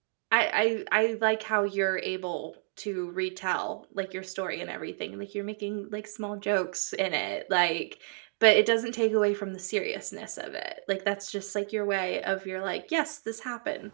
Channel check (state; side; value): silent; left; 58 dB below the other